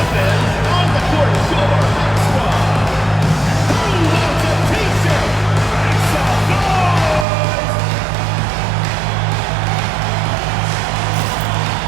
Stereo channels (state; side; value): drops out; left; at 7.2 s